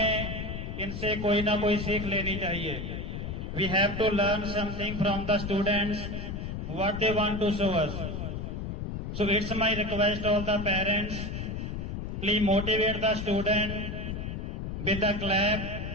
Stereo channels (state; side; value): noise; left; rumble, 5 dB below the sound